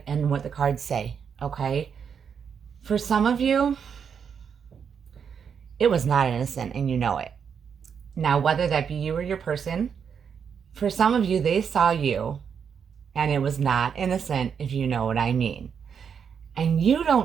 and what the cards say, okay? For some of you, it was not innocent, and you know it. Now, whether that be you or your person, for some of you, they saw you, and it was not innocent, if you know what I mean. And you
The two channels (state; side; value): quieter; left; 7.1 dB